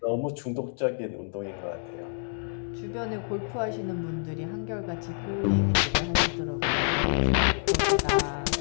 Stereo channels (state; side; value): silent; right; 59 dB below the other